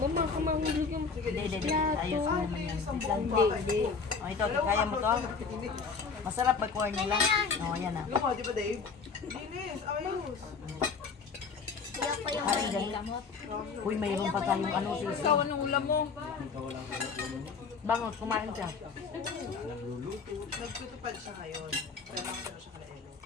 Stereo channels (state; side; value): quieter; right; 5.1 dB